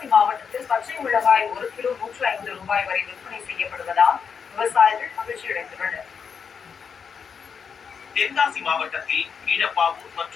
மாவட்டத்தில் பச்சை மிளகாய் 1 கிலோ 105 ரூபாய் வரை விற்பனை செய்யப்படுவதால் விவசாயிகள் மகிழ்ச்சியடைந்துள்ளனர். தென்காசி மாவட்டத்தில் கீழப்பாவூர்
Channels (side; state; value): right; quieter; 6.4 dB